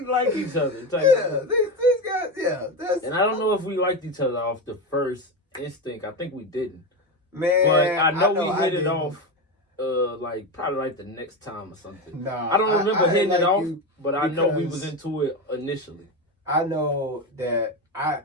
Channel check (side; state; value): both; normal; correlation 0.17